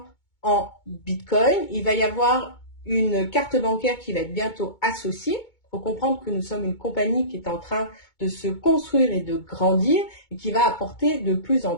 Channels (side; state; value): right; late; 2.2 ms